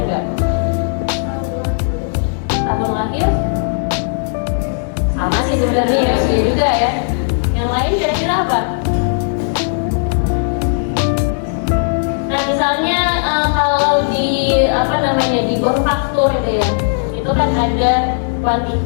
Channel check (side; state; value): right; silent; digital silence